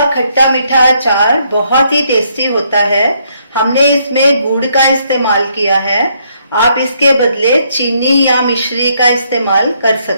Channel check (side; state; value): both; inverted; correlation -0.72